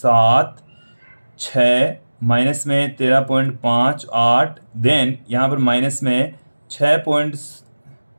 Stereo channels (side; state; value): both; inverted; correlation -1.00